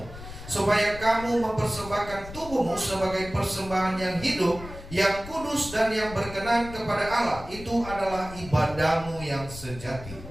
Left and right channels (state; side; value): noise; left; rumble, 14 dB below the sound